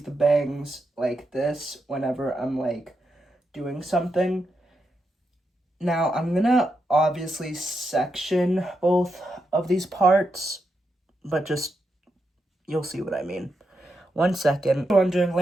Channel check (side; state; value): both; normal; correlation 0.84